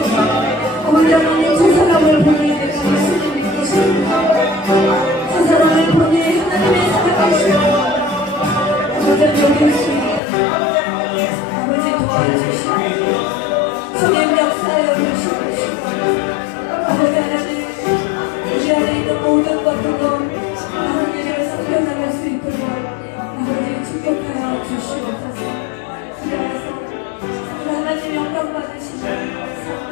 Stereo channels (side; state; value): right; drops out; at 10.2 s